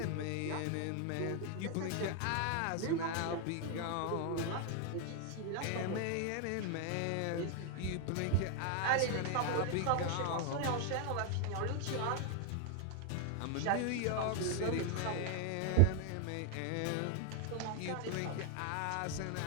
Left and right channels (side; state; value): both; different; correlation 0.00